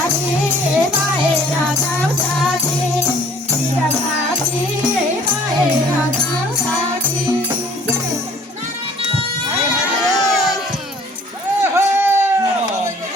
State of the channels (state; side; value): normal; both; correlation 0.55